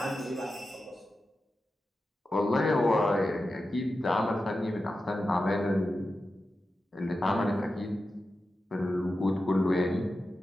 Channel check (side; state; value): both; normal; correlation 0.91